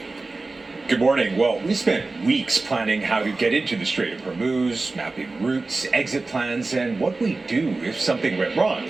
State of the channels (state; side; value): quieter; left; 3.5 dB